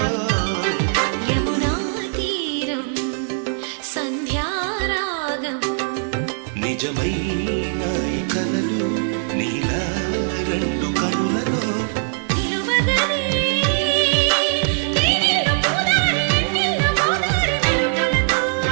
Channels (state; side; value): silent; left; 65 dB below the other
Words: యమునా తీరం సంధ్యారాగం నిజమైన ఈ కలలు నీలా రెండు కనులలో